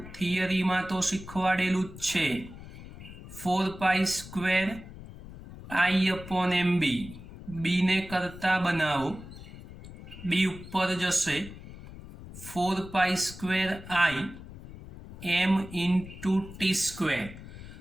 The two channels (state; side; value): noise; left; rumble, 15 dB below the sound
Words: थियरी में तो शीखवाडेलुं ज छे। 4 pi square I upon MB। B ने करता बनावो, बी उपर जशे 4 pi square I m into T square.